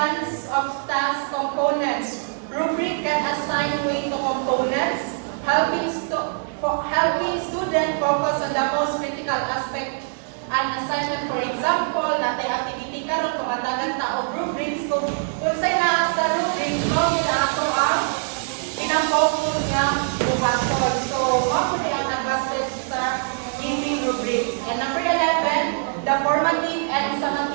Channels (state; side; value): silent; left; digital silence